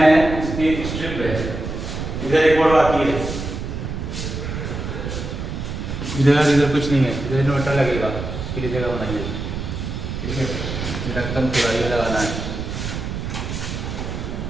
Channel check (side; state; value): right; noise; rumble, 5 dB below the sound